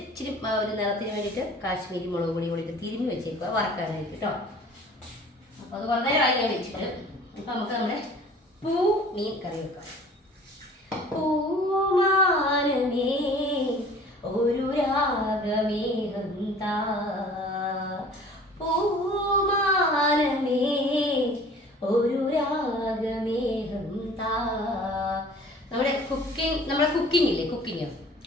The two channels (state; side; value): normal; both; correlation 0.48